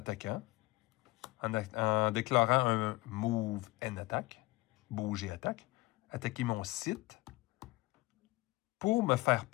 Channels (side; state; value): right; quieter; 20.9 dB